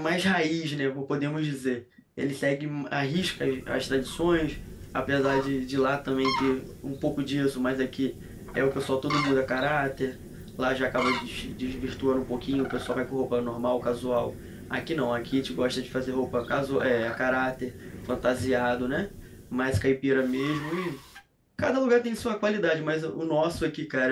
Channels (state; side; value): identical; both; correlation 1.00